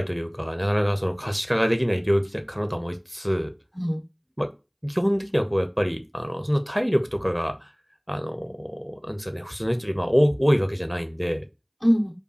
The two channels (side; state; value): both; identical; correlation 1.00